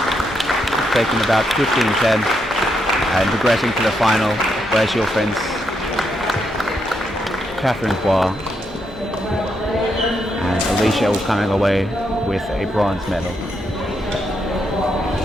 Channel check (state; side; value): normal; both; correlation 0.80